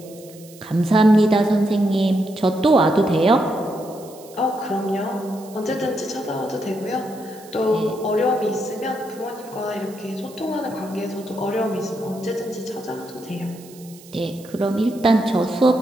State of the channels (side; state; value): right; noise; hiss, 22 dB below the sound